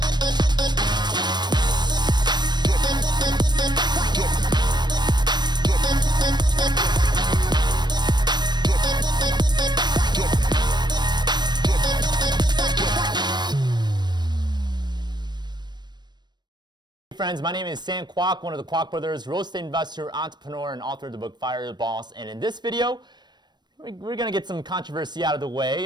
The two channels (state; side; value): late; left; 0.21 ms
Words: Friends, my name is Sam Kwok, one of the Kwak Brothers, real estate investor, entrepreneur, and author of the book Fire Your Boss. And in this video, we're going to get some controversy out of the way,